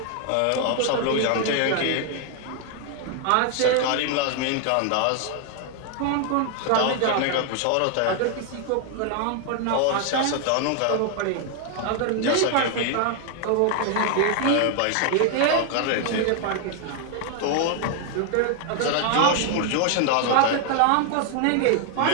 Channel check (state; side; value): different; both; correlation 0.00